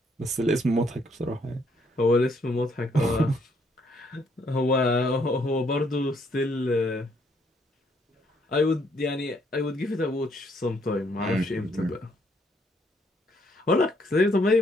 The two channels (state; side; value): normal; both; correlation 0.70